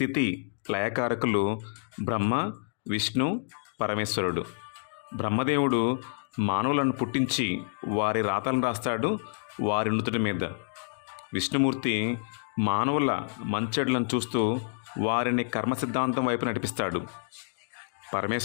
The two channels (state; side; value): silent; right; digital silence